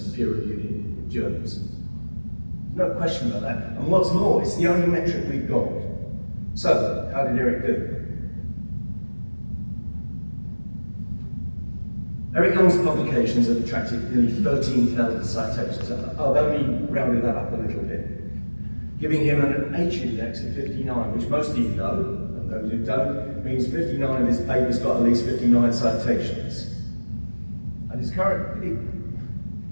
peer-reviewed journals. No question about that. And what's more, it's the only metric we've got. So, how did Eric do? Eric Young's publications have attracted nearly 13,000 citations. I've only rounded that up a little bit, giving him an H index of 59, which most of you know, and those who don't, means 59 of his papers got at least 59 citations. And his current,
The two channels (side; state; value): both; inverted; correlation -1.00